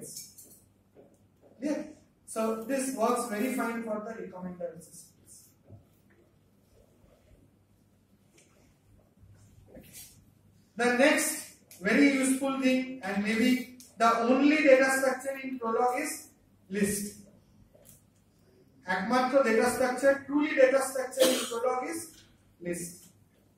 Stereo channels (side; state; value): both; identical; correlation 1.00